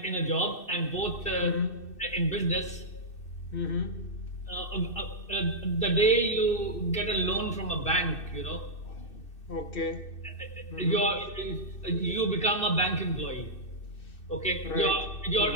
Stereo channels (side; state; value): right; late; 2.6 ms